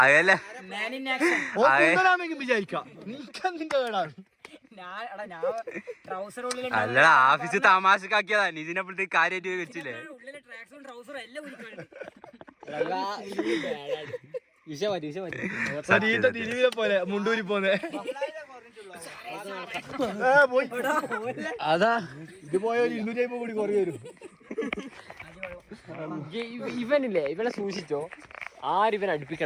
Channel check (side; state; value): both; identical; correlation 1.00